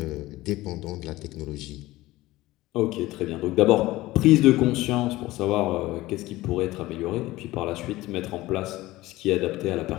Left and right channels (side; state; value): right; quieter; 18.0 dB